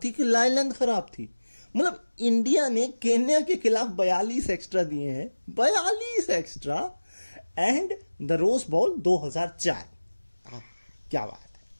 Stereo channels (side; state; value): both; inverted; correlation -1.00